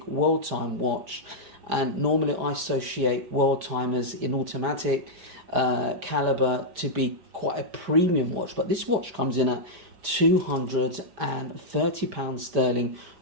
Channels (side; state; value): left; late; 5.0 ms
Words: world time watch. And normally I associate world timers in automatic caliber to be quite a premium watch. But this watch comes in at £230 sterling